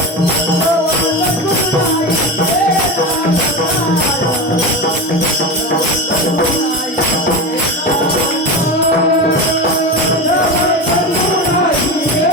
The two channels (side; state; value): both; normal; correlation 0.23